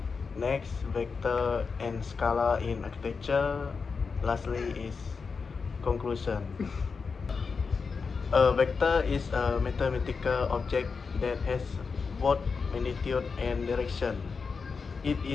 next vector and scalar in architecture, lastly is conclusion. A vector is a mathematical object that has both magnitude and direction. It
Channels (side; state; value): right; quieter; 5.1 dB